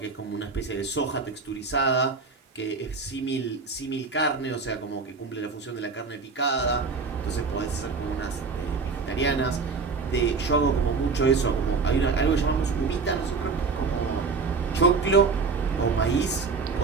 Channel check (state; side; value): quieter; left; 4.6 dB